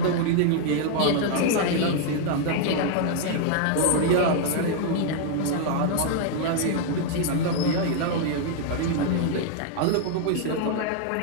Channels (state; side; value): different; both; correlation 0.00